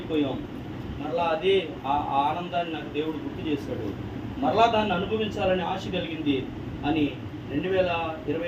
మరలా అదే ఆ ఆనందాన్ని నాకు దేవుడు గుర్తు చేశాడు. మరలా దాన్ని అనుభవించాలని ఆశ కలిగింది అని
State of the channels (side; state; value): both; identical; correlation 1.00